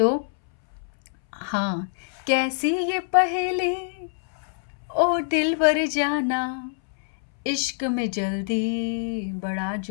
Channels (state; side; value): silent; right; 62 dB below the other